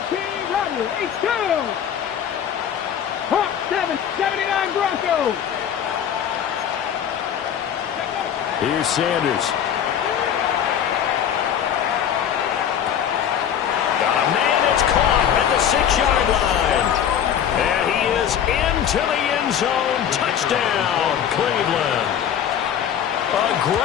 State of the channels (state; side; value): quieter; right; 9.1 dB